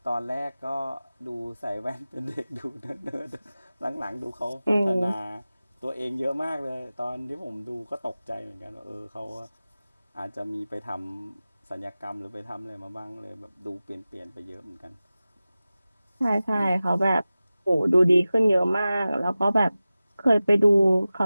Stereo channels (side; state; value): both; inverted; correlation -0.96